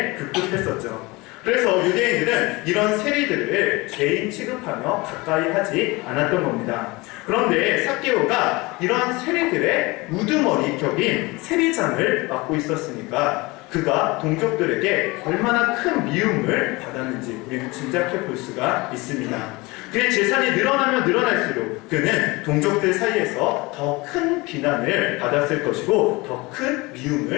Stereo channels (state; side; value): quieter; right; 23.6 dB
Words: 급급했었죠. 그래서 유대인들은 이런 세리들을 죄인 취급하며 가까이 하지 않았던 겁니다. 그런데 삭개오가 이러한 세리들의 우두머리 격인 세리장을 맡고 있었으니까 그가 동족들에게 얼마나 큰 미움을 받았는지 우리는 짐작해 볼 수가 있습니다. 그의 재산이 늘어나면 늘어날수록 그는 동족들 사이에서 더 큰 비난을 받았을 것이고 더 큰